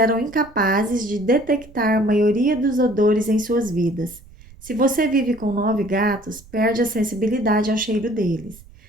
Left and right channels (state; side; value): noise; right; rumble, 22 dB below the sound